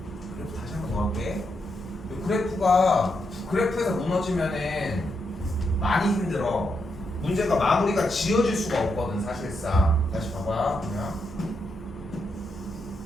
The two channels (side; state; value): both; normal; correlation 0.82